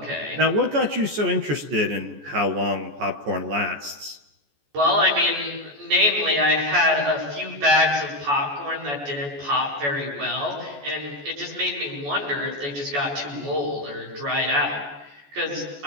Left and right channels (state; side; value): late; left; 14 ms